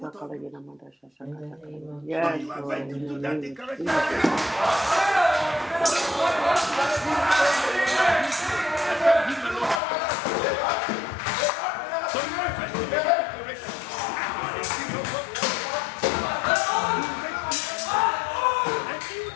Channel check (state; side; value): drops out; right; at 9.8 s